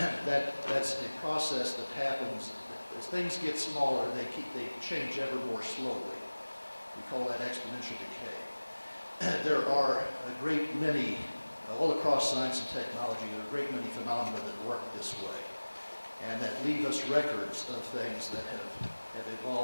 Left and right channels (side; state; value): both; inverted; correlation -1.00